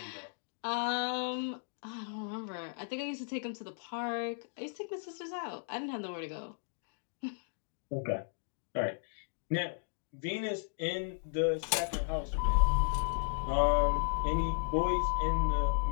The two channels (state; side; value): silent; right; digital silence